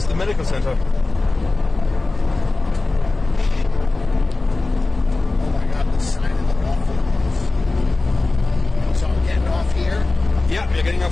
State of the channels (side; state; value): right; quieter; 3.3 dB